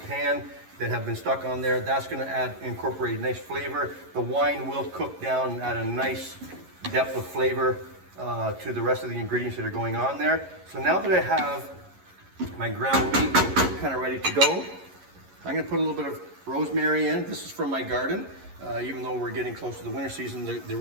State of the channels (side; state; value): left; late; 11 ms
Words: pan that have been stuck on there. That's going to incorporate a nice flavor. The wine will cook down and add a nice depth of flavor to the rest of the ingredients that are going on there. So now that I have my ground meat kind of ready to go, I'm going to put a little bit of rosemary in. This is from my garden. Even though we're getting close to the winter season, the